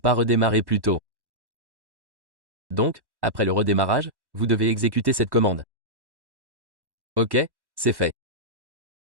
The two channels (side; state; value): left; late; 1.1 ms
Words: redémarré plus tôt. Donc, après le redémarrage, vous devez exécuter cette commande. Ok, c'est fait.